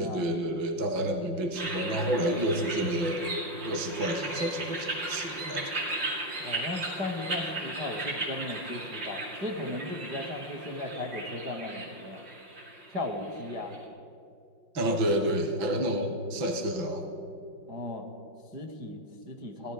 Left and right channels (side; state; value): left; late; 5.6 ms